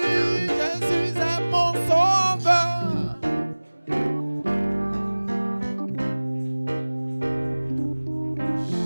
Jésus est mon sauveur.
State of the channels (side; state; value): both; inverted; correlation -1.00